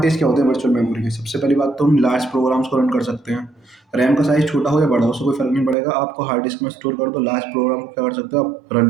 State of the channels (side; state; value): left; drops out; at 5.8 s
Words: क्या होते हैं वर्चुअल मेमोरी के, सबसे पहली बात तो हम लार्ज प्रोग्राम्स को रन कर सकते हैं। रैम का साइज़ छोटा हो या बड़ा हो, उससे कोई फ़र्क नहीं पड़ेगा, आपको हार्ड डिस्क में स्टोर कर दो, लार्ज प्रोग्राम को क्या कर सकते हो, आप रन